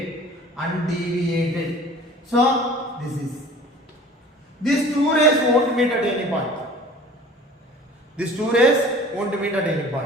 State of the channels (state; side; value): normal; both; correlation 0.45